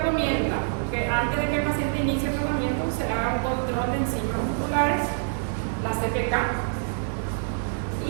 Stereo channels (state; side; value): silent; left; 61 dB below the other